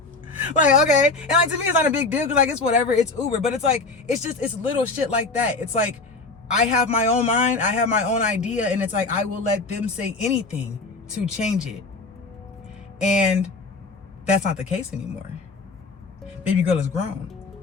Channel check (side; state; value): right; quieter; 3.7 dB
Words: Okay. And to me, it's not a big deal because it's whatever. It's Uber. But it's little shit like that. It's I have my own mind. I have my own idea. And it's I will let them say anything to change it. And that's not the case anymore. Baby girl is grown.